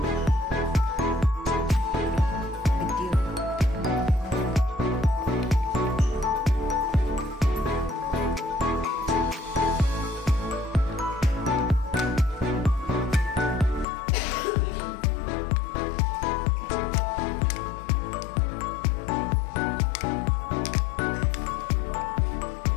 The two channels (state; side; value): drops out; right; at 13.9 s